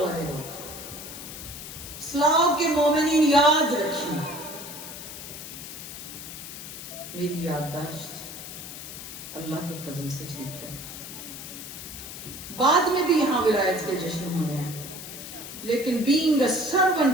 لوگ، اسلام کے مومنین یاد رکھیں، میری یادداشت اللہ کے فضل سے ٹھیک ہے، بعد میں بھی یہاں ولایت کے جشن ہونے ہیں، لیکن being a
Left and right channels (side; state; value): left; noise; hiss, 11 dB below the sound